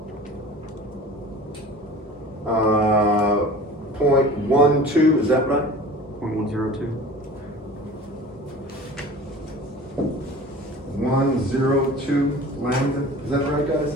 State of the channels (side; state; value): both; normal; correlation 0.41